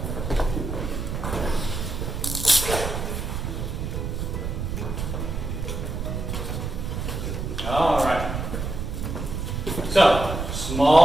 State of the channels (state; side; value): noise; right; rumble, 3 dB below the sound